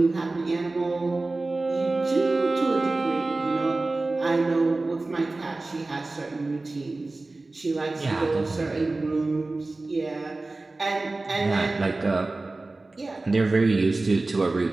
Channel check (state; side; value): quieter; left; 3.2 dB